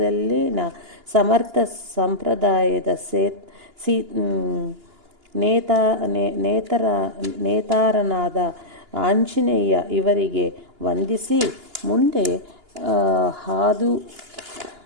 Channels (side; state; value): left; late; 2.9 ms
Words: ಸಮರ್ಥ ಸಂಪ್ರದಾಯದ ನೇತಾರನಾದ ಆಂಜನೇಯ ಇವರಿಗೆ ವಂದಿಸಿ ಮುಂದೆ